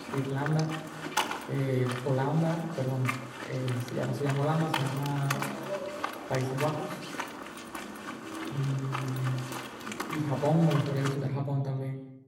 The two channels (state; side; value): identical; both; correlation 1.00